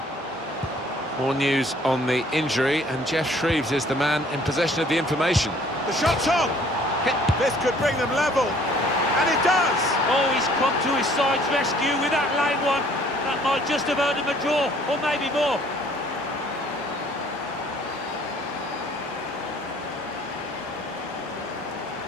More news on the injury, and Jeff Shreves is the man in possession of the information. The shot's on! This could bring them level, and it does! Oh, he's come to his side's rescue with that late one. That might just have earned him a draw, or maybe more.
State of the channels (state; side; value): normal; both; correlation 0.57